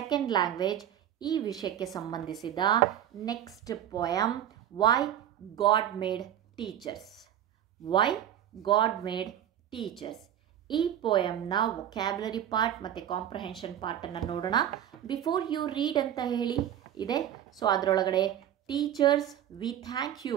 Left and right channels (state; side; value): quieter; left; 10.7 dB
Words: ಲ್ಯಾಂಗ್ವೇಜ್ ಈ ವಿಷಯಕ್ಕೆ ಸಂಬಂಧಿಸಿದ next poem why God made teachers. Why God made teachers ಈ ಪೋಯಮ್ನ ವೊಕ್ಯಾಬ್ಯುಲರಿ ಪಾರ್ಟ್ ಮತ್ತು ಕಾಂಪ್ರಹೆನ್ಷನ್ ಪಾರ್ಟನ್ನು ನೋಡೋಣ. ಬಿಫೋರ್ ಯು ರೀಡ್ ಅಂತ ಹೇಳಿ ಇದೆ. ಸೊ ಅದರೊಳಗಡೆ teachers we thank you